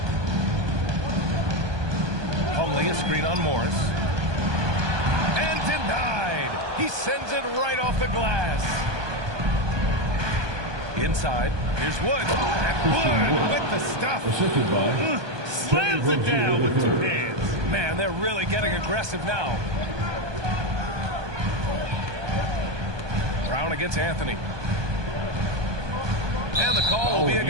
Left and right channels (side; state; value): left; late; 1.2 ms